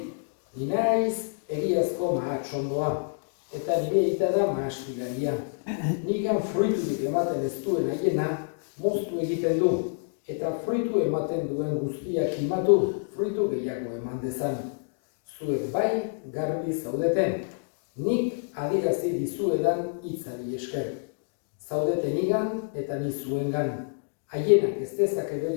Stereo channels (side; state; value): right; silent; digital silence